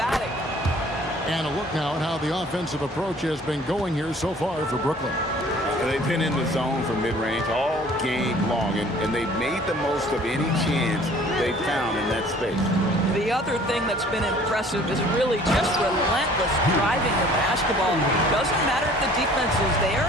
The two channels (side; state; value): both; normal; correlation 0.52